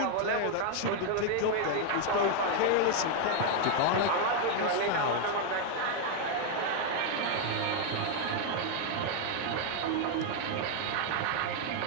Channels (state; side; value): different; both; correlation 0.01